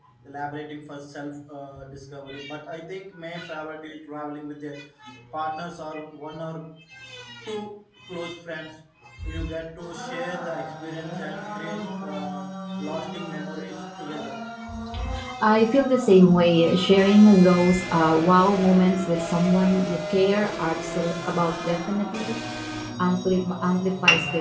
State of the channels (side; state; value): both; identical; correlation 1.00